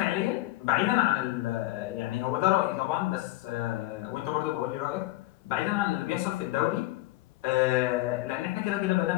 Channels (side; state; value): right; quieter; 17.5 dB